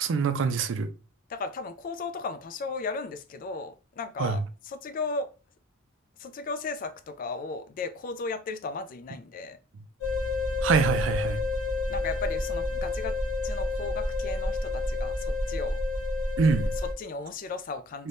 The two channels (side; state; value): both; normal; correlation 0.51